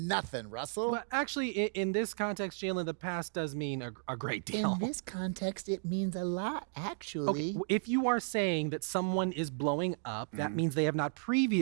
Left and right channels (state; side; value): silent; left; digital silence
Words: Russell. Well, actually, in this context, Jalen, the past does mean a great deal. In this context, it means a lot, actually. Okay, if you are saying that someone is blowing up, that means they have not